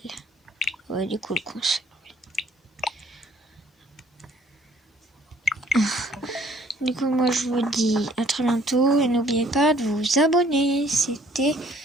Ouais, du coup, le conseil. Du coup, moi, je vous dis à très bientôt. Et n'oubliez pas de vous abonner. C'était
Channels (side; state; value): both; normal; correlation 0.59